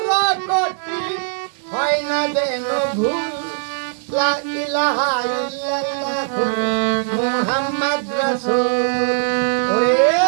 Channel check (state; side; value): silent; left; digital silence